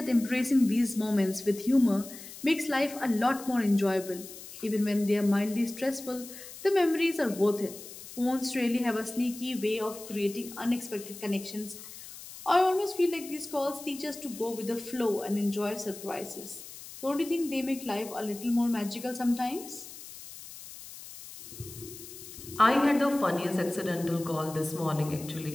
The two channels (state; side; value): noise; left; hiss, 14 dB below the sound